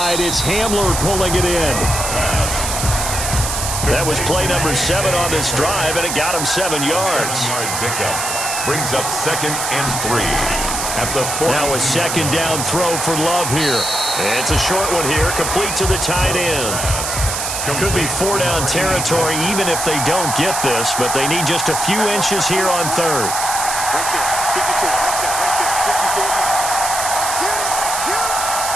it's Hamler pulling it in. That was play number 7 on this drive, and it got him 7 yards. 7-yard pickup brings up second and 3. At the 40. Now a second down throw for Love here. It's a short one here, complete to the tight end. Could be 4-down territory even if they don't get this, but they need just a few inches here on third.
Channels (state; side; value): noise; right; hiss, 3 dB below the sound